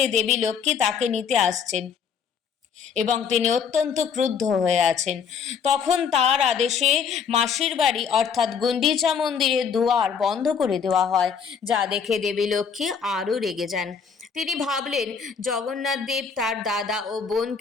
দেবী লক্ষ্মী তাকে নিতে আসছেন এবং তিনি অত্যন্ত ক্রুদ্ধ হয়ে আছেন। তখন তার আদেশে মাসির বাড়ি অর্থাৎ গুন্ডিচা মন্দিরের দুয়ার বন্ধ করে দেওয়া হয়, যা দেখে দেবী লক্ষ্মী আরও রেগে যান। তিনি ভাবলেন জগন্নাথ দেব তার দাদা ও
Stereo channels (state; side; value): quieter; right; 6.6 dB